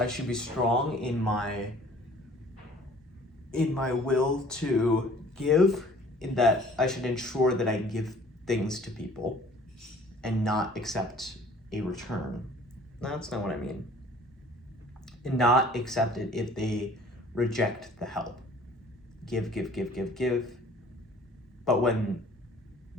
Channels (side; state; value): both; normal; correlation 0.52